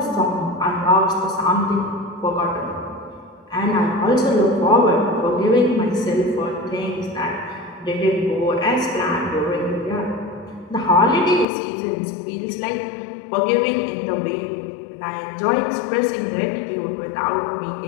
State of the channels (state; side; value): drops out; right; at 11.5 s